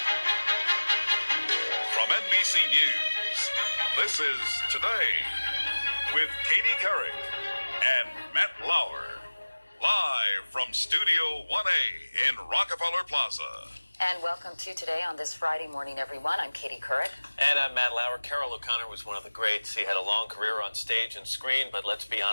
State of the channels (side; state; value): both; inverted; correlation -1.00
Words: From NBC News, this is Today with Katie Couric and Matt Lauer. Live from Studio 1A in Rockefeller Plaza. And welcome to Today on this Friday morning, everyone. I'm Katie Couric. And I'm Matt Lauer. Carroll O'Connor was one of the greats. He had a long career on stage and screen, but let's be